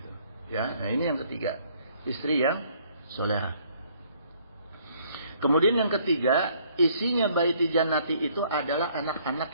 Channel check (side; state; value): both; inverted; correlation -0.63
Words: Ya. Nah ini yang ketiga, istri yang solehah. Kemudian yang ketiga, isinya baiti jannati itu adalah anak-anak